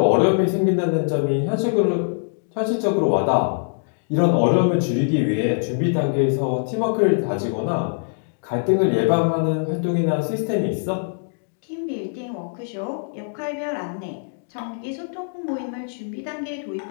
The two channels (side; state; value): right; silent; digital silence